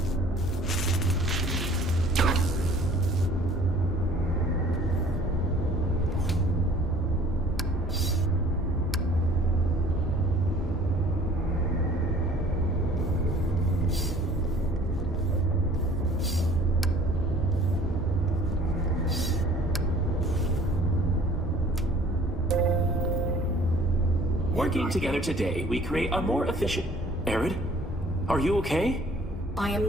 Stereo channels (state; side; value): normal; both; correlation 0.53